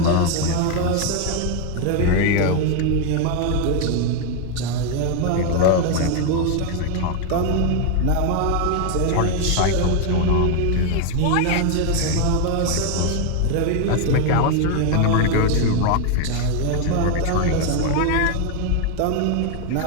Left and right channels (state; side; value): different; both; correlation 0.01